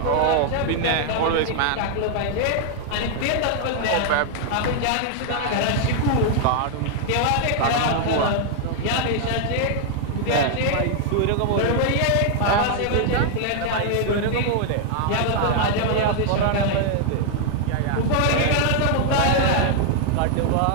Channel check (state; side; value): different; both; correlation 0.00